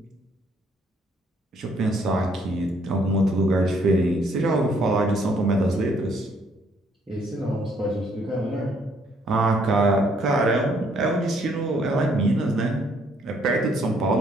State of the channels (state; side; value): normal; both; correlation 0.67